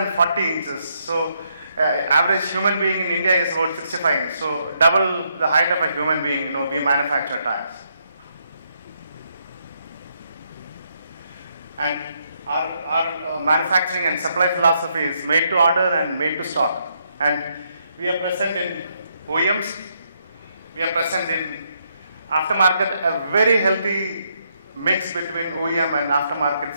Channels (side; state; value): both; inverted; correlation -0.76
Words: inches. So average human being in India is about 65 inches. So double the height of a human being, we manufacture tires. And our manufacturing and supply philosophy is made to order and made to stock. And we are present in OEMs, we are present in aftermarket, a very healthy mix between OEM and aftermarket